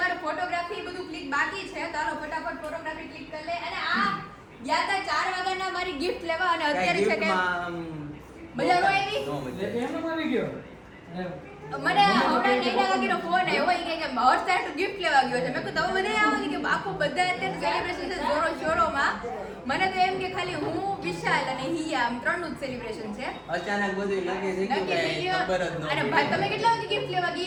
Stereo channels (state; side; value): identical; both; correlation 1.00